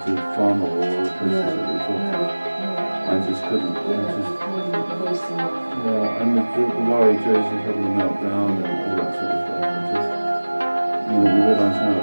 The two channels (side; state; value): both; inverted; correlation -1.00